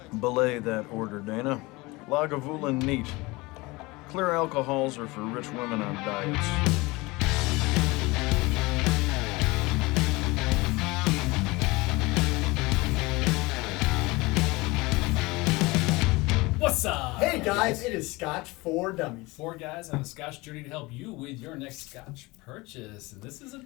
Belay that order, Dana. Lagavulin neat. Clear alcohols are for rich women on diets. What's up? Hey guys, it is Scotch for Dummies. 4 guys on a Scotch journey to help you with your next Scotch purchase. And this is a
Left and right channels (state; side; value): quieter; right; 23.0 dB